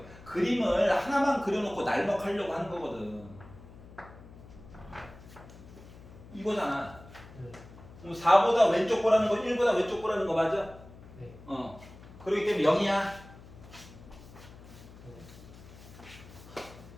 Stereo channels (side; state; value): left; noise; hum, 19 dB below the sound